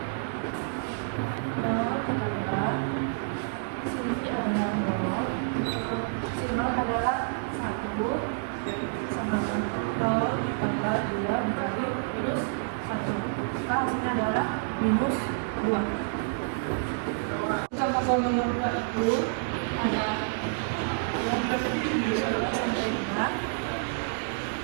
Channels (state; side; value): silent; left; digital silence